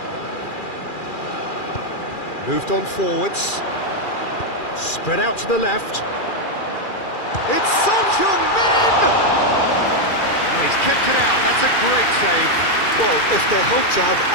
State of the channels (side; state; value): right; late; 2.4 ms